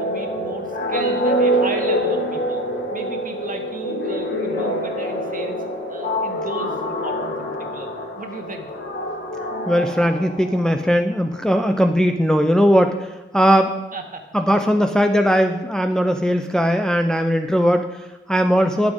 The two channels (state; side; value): normal; both; correlation 0.73